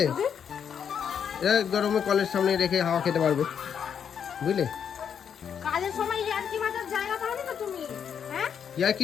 এটা গরমে কলের সামনে রেখে হাওয়া খেতে পারবে, বুঝলে? কাজের সময় ইয়ার্কি মাথার জায়গা পাও না তো তুমি, হ্যাঁ? ইয়ার্কি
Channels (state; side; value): quieter; right; 7.9 dB